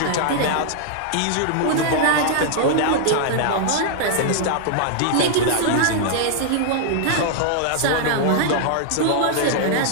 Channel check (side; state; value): both; different; correlation -0.01